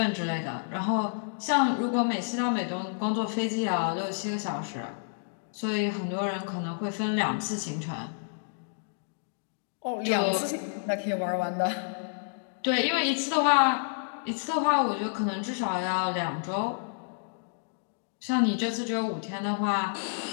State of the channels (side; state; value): right; silent; digital silence